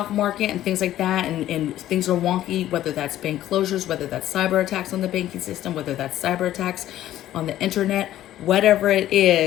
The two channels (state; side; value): quieter; right; 13.2 dB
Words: market and things like that, and things are wonky, whether that's bank closures, whether that's cyber attacks on the banking system, whether that's cyber attacks on the internet, whatever it